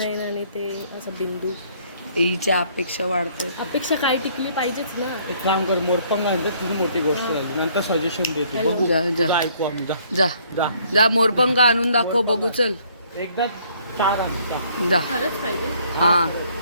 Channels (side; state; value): both; inverted; correlation -0.63